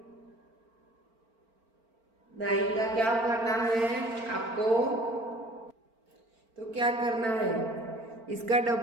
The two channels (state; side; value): late; left; 4.4 ms